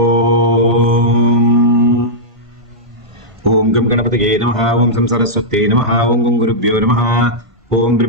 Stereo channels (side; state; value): left; late; 1.5 ms